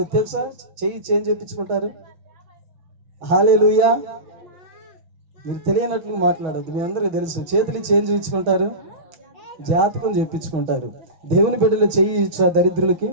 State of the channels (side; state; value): left; late; 6.2 ms